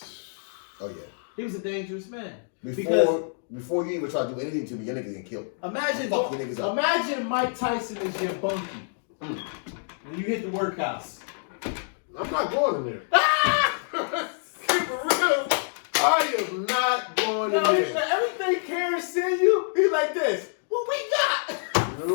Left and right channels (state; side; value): silent; right; digital silence